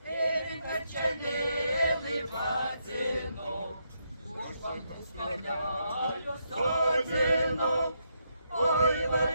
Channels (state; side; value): inverted; both; correlation -0.79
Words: ir kad čia mėlai vadino. Už langus skargalių sodino, oi